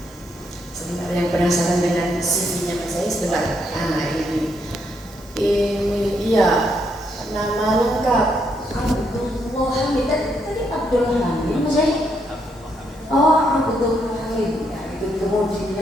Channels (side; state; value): both; normal; correlation 0.76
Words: Sebentar, yang penasaran dengan CV-nya Mas Ari sebentar. Ini iya, nama lengkap Abdul Hamid. Tadi Abdul Hamid Mas Ari? Oh, Abdul Hamid. Ya, itu